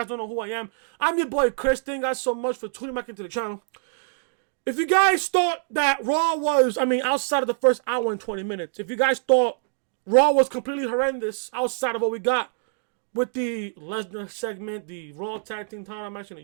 don't know who I am, I'm your boy Chris. Thank you guys so much for tuning back into the channel. If you guys thought that Raw was, outside of the first hour and 20 minutes, if you guys thought Raw was completely horrendous outside of what we got with the Lesnar segment, the Raw Tag Team title match, and the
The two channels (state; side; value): silent; left; digital silence